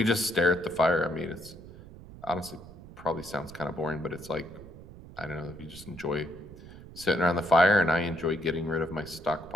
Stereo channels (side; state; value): right; noise; rumble, 17 dB below the sound